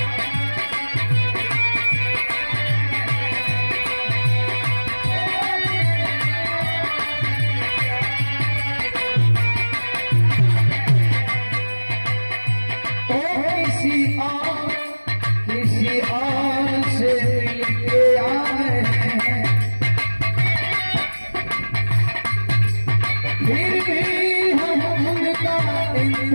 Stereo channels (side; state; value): both; inverted; correlation -1.00